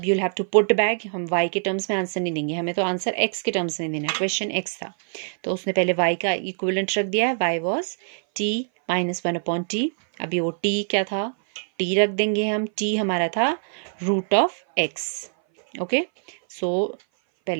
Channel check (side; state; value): left; silent; 59 dB below the other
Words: you'll have to put back, हम y के टर्म्स में आंसर नहीं देंगे, हमें तो आंसर x के टर्म्स में देना है, क्वेश्चन x था तो उसने पहले y का इक्विवेलेंट रख दिया है, y was t -1 upon t। अभी वो t क्या था, t रख देंगे हम, t हमारा था √(x). ओके सो